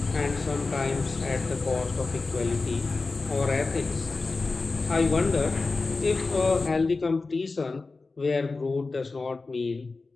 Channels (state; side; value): quieter; right; 3.8 dB